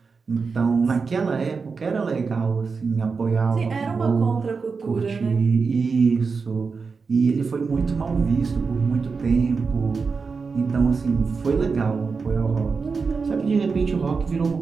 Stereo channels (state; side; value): quieter; left; 4.9 dB